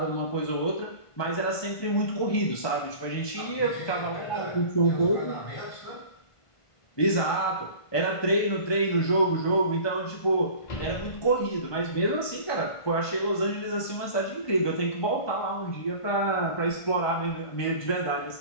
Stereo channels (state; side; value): late; right; 1.5 ms